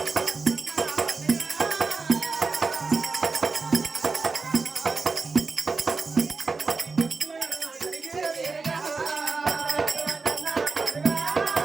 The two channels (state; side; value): quieter; left; 4.3 dB